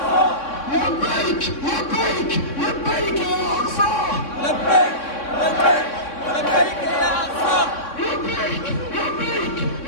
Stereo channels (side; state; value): right; late; 3.6 ms